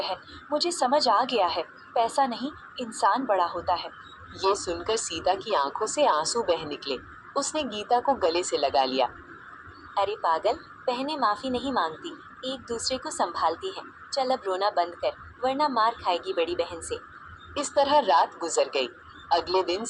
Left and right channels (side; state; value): both; identical; correlation 1.00